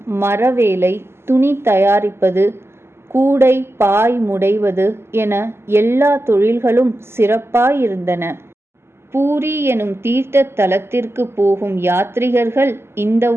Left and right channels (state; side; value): late; left; 0.12 ms